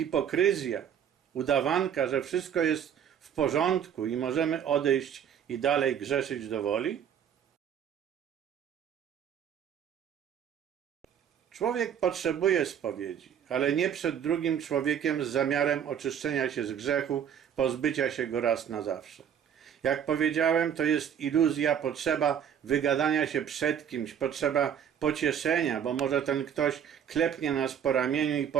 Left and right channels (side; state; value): left; quieter; 8.7 dB